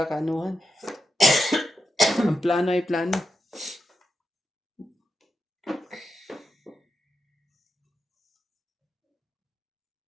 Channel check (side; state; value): both; normal; correlation 0.87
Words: Ang plano ay plano.